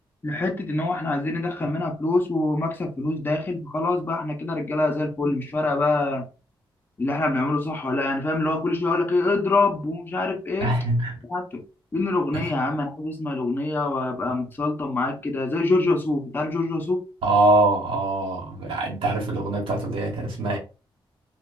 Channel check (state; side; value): normal; both; correlation 0.69